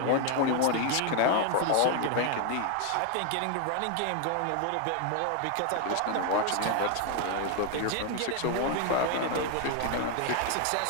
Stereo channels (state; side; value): different; both; correlation 0.00